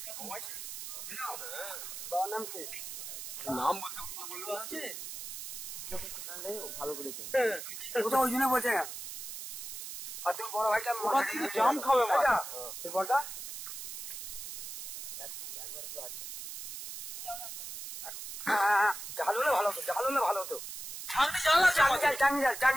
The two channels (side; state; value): right; noise; hiss, 9 dB below the sound